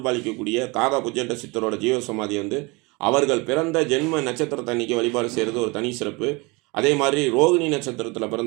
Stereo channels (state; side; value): quieter; left; 26.4 dB